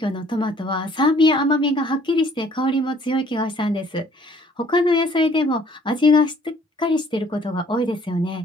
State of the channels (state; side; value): normal; both; correlation 0.58